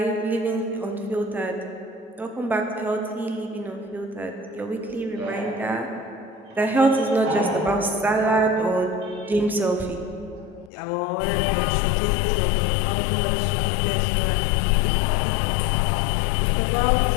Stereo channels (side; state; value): right; drops out; at 10.7 s